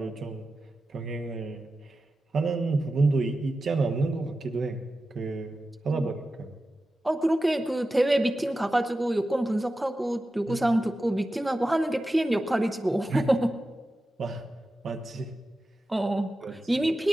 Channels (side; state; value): both; normal; correlation 0.93